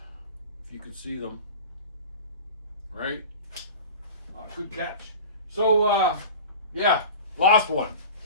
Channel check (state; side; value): inverted; both; correlation -0.36